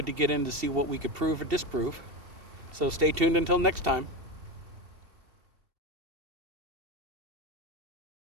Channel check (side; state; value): left; late; 2.7 ms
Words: to get in to see what we could prove or disprove. So stay tuned until next time.